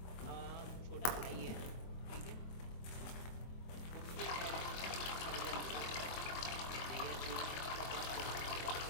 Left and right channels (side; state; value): right; late; 23 ms